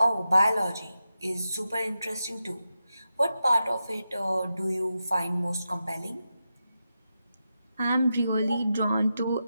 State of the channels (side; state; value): both; inverted; correlation -0.89